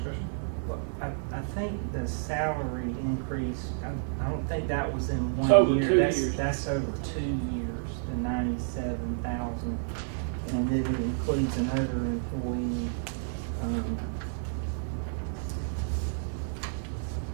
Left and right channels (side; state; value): left; silent; 58 dB below the other